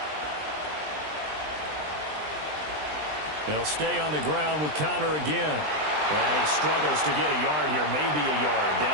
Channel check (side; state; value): left; late; 20 ms